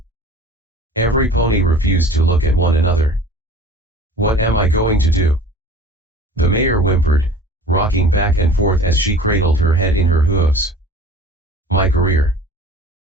Every pony refused to look at one another. "What am I going to do?" the mayor whimpered, rocking back and forth as she cradled her head in her hooves. "My career.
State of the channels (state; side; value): normal; both; correlation 0.44